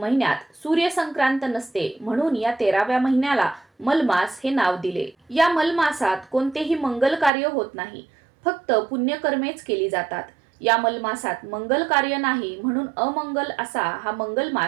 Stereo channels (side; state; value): left; drops out; at 7.3 s